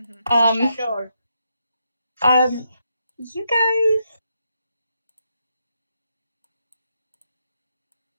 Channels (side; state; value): both; inverted; correlation -0.81